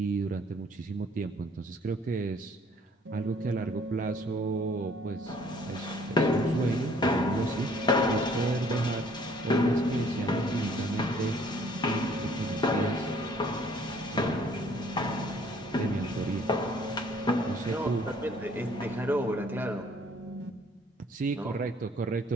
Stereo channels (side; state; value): both; normal; correlation 0.59